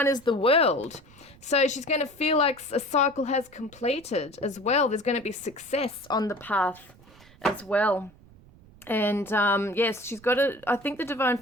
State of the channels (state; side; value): noise; right; rumble, 25 dB below the sound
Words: is the World. So she's going to feel like a cycle has completed as well. There's going to be success on the path as well. And yes, she's got to, I think the Divine